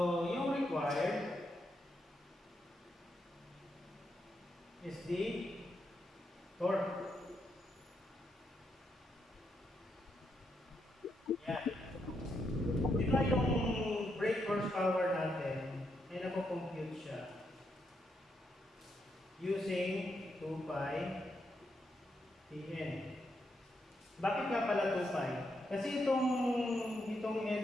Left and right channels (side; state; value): both; normal; correlation 0.80